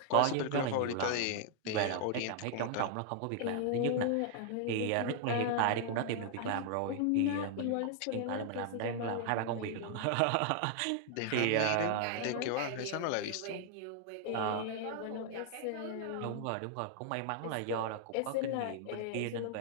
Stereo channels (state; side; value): different; both; correlation 0.00